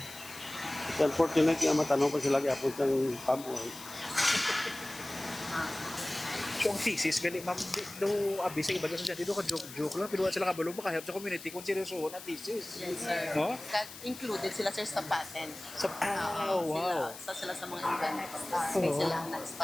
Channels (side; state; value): left; noise; hiss, 14 dB below the sound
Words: Unfortunately, ang matanong pa sila kaya po sa palm oil. So ang thesis, gali, ma'am, no, abi sa iba sa dito ka joke lang, pero sila kabalo ba kahit sa community kung seryoso na thesis. Yes sir. No? That included sila sir sa patent. Sa, wow. Sila sa mga event. May sila ang